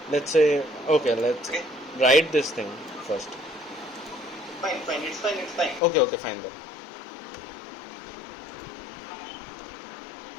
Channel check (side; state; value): right; drops out; at 5.8 s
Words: Let's say let's write this thing first. Fine. It's fine. Okay, fine then.